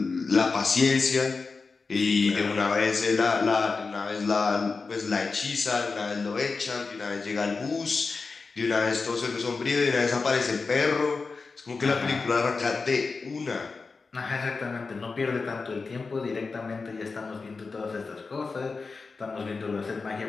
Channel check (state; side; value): quieter; right; 4.3 dB